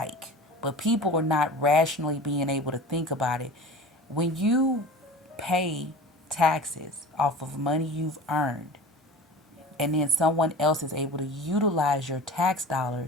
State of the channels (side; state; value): both; normal; correlation 0.37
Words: But people are not rationally being able to think about it. When you pay taxes off of money you've earned, and then someone else is able to utilize your tax